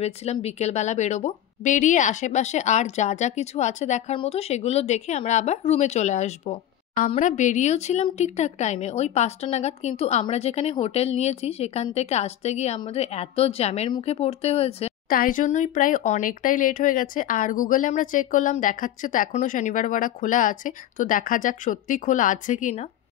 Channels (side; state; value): right; quieter; 11.7 dB